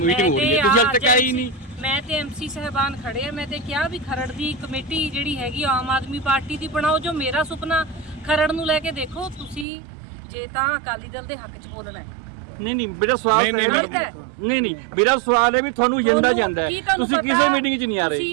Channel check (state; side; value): drops out; left; at 9.7 s